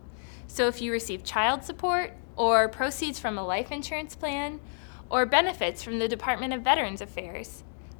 So if you receive child support, or proceeds from a life insurance plan, or benefits from the Department of Veterans Affairs,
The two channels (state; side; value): silent; right; digital silence